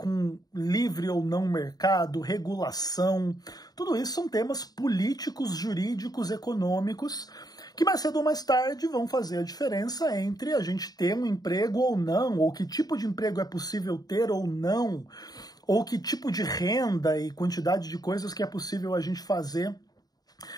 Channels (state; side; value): late; right; 0.19 ms